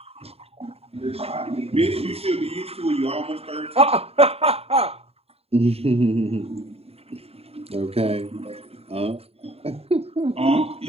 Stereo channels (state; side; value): late; left; 0.29 ms